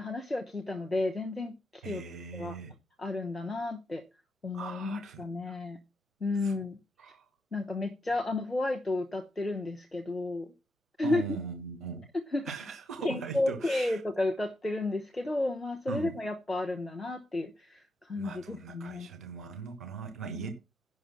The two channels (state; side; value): normal; both; correlation 0.82